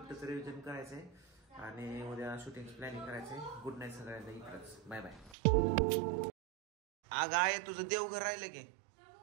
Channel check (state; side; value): drops out; left; at 5.4 s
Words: रिव्हिजन करायचंय आणि उद्या शूटिंग प्लॅनिंग करायचंय. गुड नाईट सगळ्यांना. इकडंच बाय बाय. अगं आहे तुझं देवघर राहिलं की?